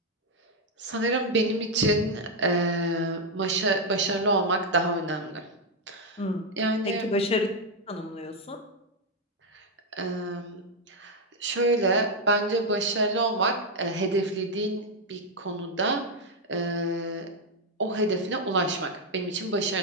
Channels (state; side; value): normal; both; correlation 0.02